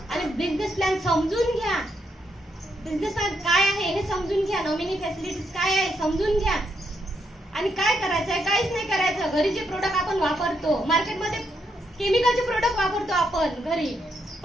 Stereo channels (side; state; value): both; normal; correlation 0.79